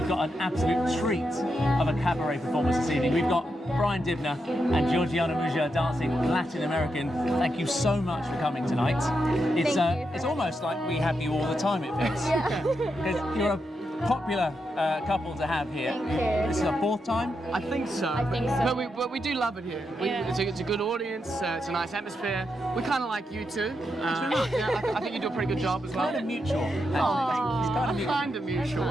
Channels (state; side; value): normal; both; correlation 0.84